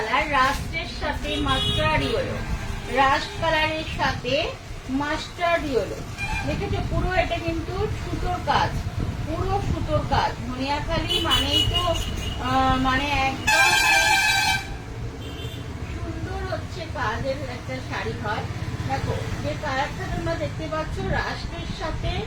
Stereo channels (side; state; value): both; identical; correlation 1.00